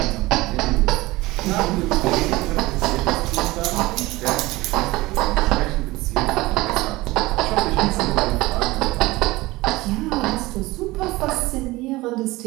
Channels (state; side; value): quieter; left; 20.1 dB